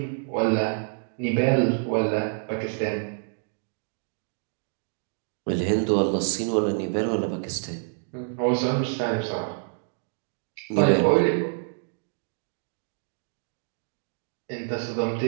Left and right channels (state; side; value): silent; left; digital silence